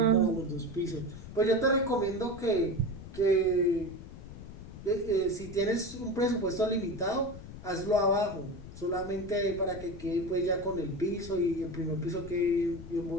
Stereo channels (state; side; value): noise; left; rumble, 13 dB below the sound